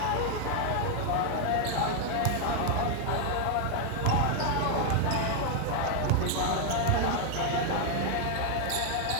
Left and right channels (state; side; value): different; both; correlation 0.00